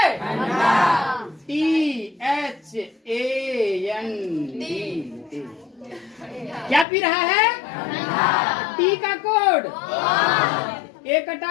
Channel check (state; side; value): drops out; right; at 6.9 s